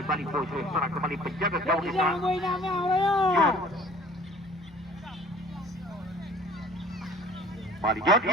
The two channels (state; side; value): normal; both; correlation 0.50